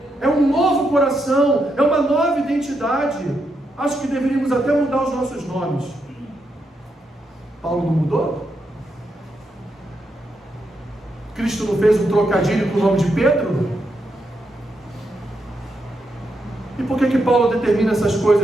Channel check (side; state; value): both; normal; correlation 0.82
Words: É um novo coração, é uma nova identidade. Acho que deveríamos até mudar os nossos nomes. Paulo não mudou? Cristo não fez um trocadilho com o nome de Pedro? E por que Paulo determina essas